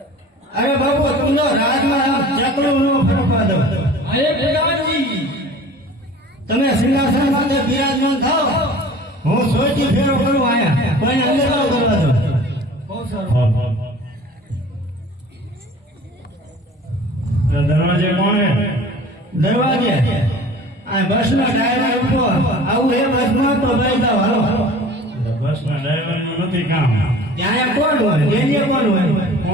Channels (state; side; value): normal; both; correlation 0.44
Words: અરે બાપુ તમને રાજમાં ચકલું નો ફરકવા દો. તમે સિંહાસન માટે બિરાજમાન થાવ, હું સોચી ફેરો કરું આયા કોઈને અંદર ન કરવા દો. દરવાજે કોણ હે? દરવાજે આ બસ ના ડ્રાઈવર ઉભો આવું હે બસ માં તો ભાઈ જાવ હાલો. બસ ના ડ્રાઈવર નું નથી કામ. ત્યાં કોણ હોય? એની કોણ હોય?